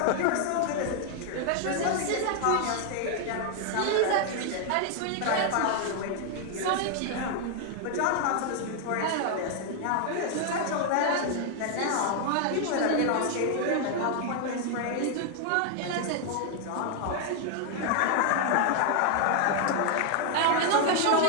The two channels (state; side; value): different; both; correlation 0.00